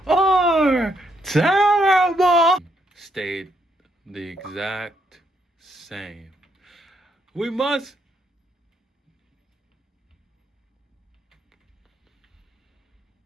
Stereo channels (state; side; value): normal; both; correlation 0.75